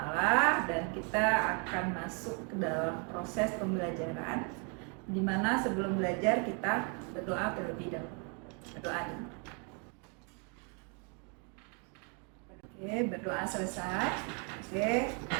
dan kita akan masuk ke dalam proses pembelajaran, di mana sebelum belajar kita berdoa terlebih dahulu. Berdoa dulu. Oke, berdoa selesai. Oke,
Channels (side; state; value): left; quieter; 36.6 dB